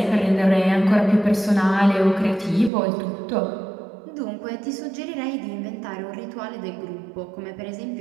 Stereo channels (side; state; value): left; drops out; at 2.7 s